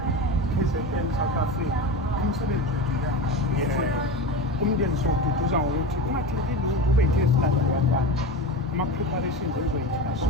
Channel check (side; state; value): both; normal; correlation 0.26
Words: KZN South Africa umsebenzi umndeni siwududuza ngokuthi ungatheleki lutho ube yithe esilandela abantwana ama-preparations enzoyithina